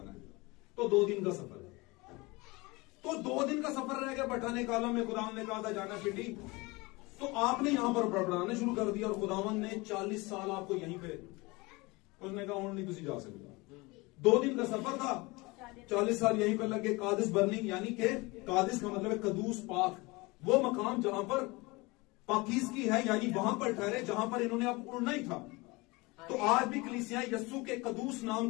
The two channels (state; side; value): quieter; right; 24.2 dB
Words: है, तो 2 दिन का सफर है। तो 2 दिन का सफर रह गया बठाने कालम में। खुदावन ने कहा था जाना पिंडी, तो आपने यहां पर बड़बड़ाने शुरू कर दिया और खुदावन ने 40 साल आपको यहीं पे, उसने कहा और नहीं तुझे जा सकते। 2 दिन का सफर था, 40 साल यहीं पर लगे। कादिस बर्नी यानी कि कादिस का मतलब है कदूस पाक, वो मकाम जहां पर पाकीज़गी है, यानी वहां पर ठहरे जहां पर इन्होंने अब उड़ना ही था। तो आज भी कलीसियां यस्सु के कदूस नाम